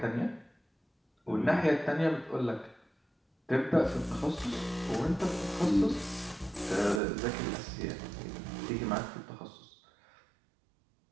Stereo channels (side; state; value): left; drops out; at 7.0 s